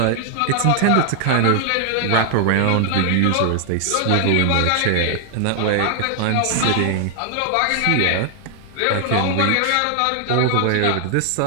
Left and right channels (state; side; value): different; both; correlation 0.00